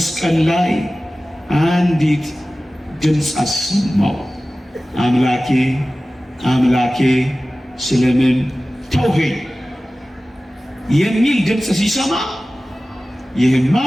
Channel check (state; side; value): normal; both; correlation 0.96